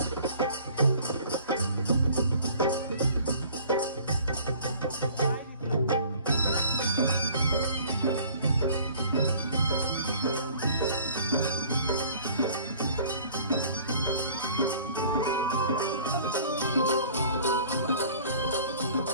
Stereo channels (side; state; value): both; inverted; correlation -0.51